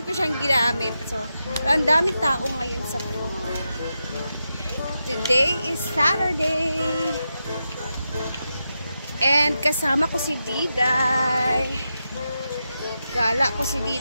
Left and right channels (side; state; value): both; inverted; correlation -0.88